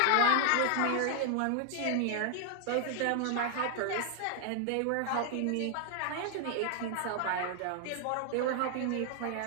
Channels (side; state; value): both; different; correlation 0.00